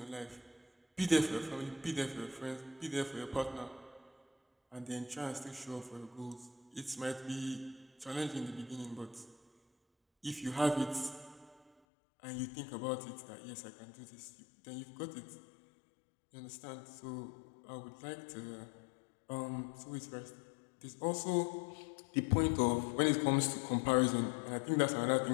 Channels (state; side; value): drops out; right; at 11.7 s